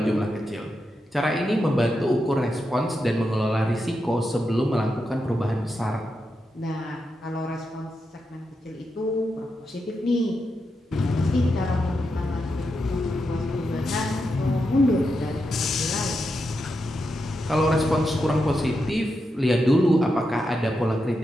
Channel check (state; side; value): normal; both; correlation 0.86